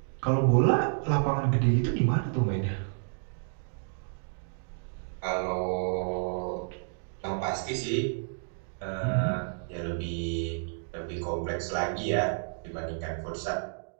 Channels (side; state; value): left; silent; digital silence